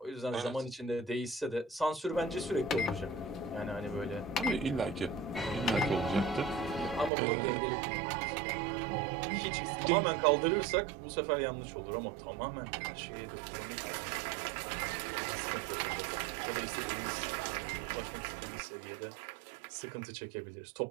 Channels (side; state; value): left; drops out; at 7.1 s